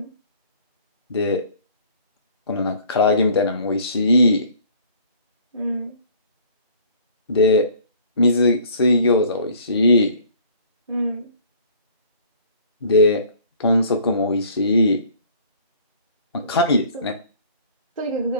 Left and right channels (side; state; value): both; inverted; correlation -0.53